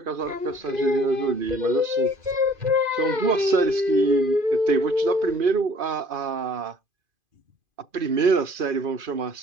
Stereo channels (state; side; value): late; left; 2.5 ms